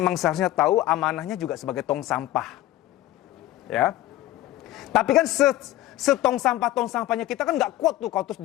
seharusnya tahu amanahnya juga sebagai tong sampah. Ya. Tapi kan tong sampahnya kita kan nggak kuat tuh kalau terus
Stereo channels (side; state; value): right; quieter; 15.1 dB